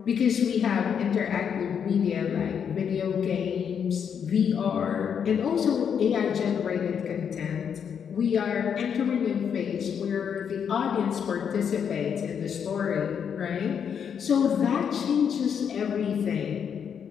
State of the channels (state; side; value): quieter; right; 7.6 dB